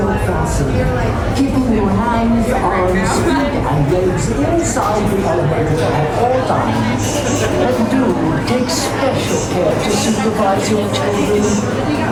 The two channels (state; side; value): identical; both; correlation 1.00